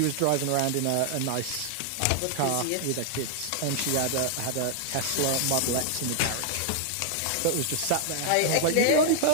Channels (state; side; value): different; both; correlation -0.01